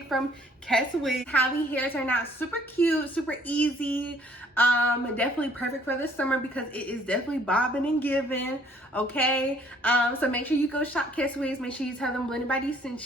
from Keswigs. How the hair turned out super cute, super easy. Definitely perfect for the summer because it is definitely bobbing and giving. Okay. So make sure you go shop Keswigs. Make sure you tell them Blended by D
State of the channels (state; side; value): normal; both; correlation 0.61